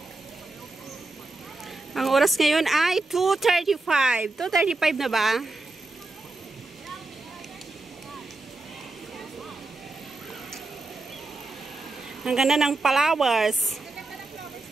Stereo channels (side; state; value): left; quieter; 3.2 dB